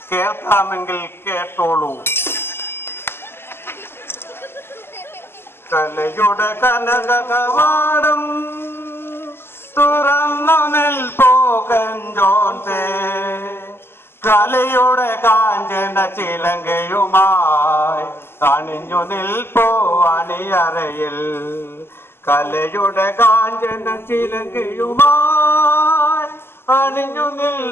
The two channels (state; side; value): late; right; 0.12 ms